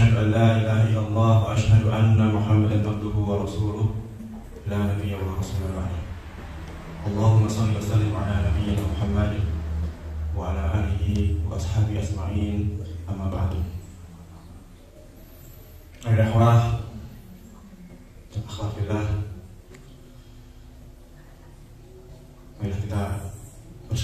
an la ilaha illallah wa asyhadu anna Muhammadan abduhu wa rasuluh la nabiyya wa rasula ba'da. Allahumma shalli wa sallim ala nabiyyina Muhammadin wa ala alihi wa ashabihi asma'in, amma ba'du. Akhwah dan akhwat fillah, marilah kita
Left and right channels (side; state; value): both; identical; correlation 1.00